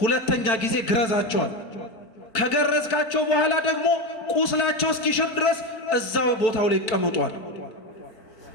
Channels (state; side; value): late; right; 4.5 ms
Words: ሁለተኛ ጊዜ ግረዛቸዋል። ከገረዝካቸው በኋላ ደግሞ ቁስላቸው እስኪሽር ድረስ እዛው ቦታው ላይ ይቀመጧል።